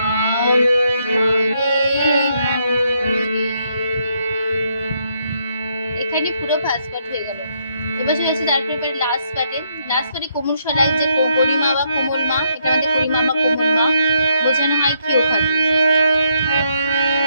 এখানে পুরো ফার্স্ট পার্ট হয়ে গেল। এবার চলে আসছে তারপরে লাস্ট পার্টে কোমল স্বরায় যে গরিমা বা কোমল মা, এটা আমাদের গরিমা বা কোমল মা বোঝানো হয় কি ওখানে।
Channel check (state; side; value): inverted; both; correlation -0.74